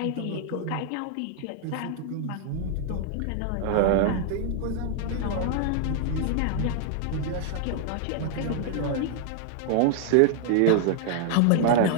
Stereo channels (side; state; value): both; different; correlation 0.00